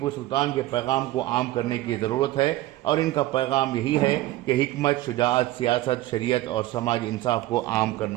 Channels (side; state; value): left; quieter; 16.6 dB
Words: सुल्तान के पैगाम को आम करने की ज़रूरत है और इनका पैगाम यही है कि हिकमत, शुजाअत, सियासत, शरीयत और समाजी इंसाफ को आम